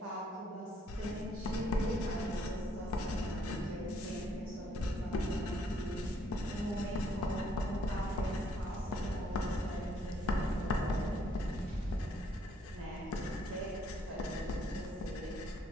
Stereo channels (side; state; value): both; normal; correlation 0.68